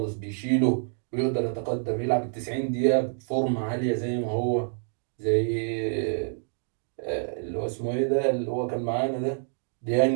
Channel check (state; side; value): silent; left; 60 dB below the other